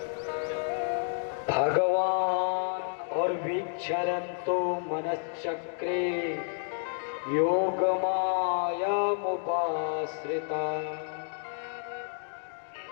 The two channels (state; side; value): silent; right; digital silence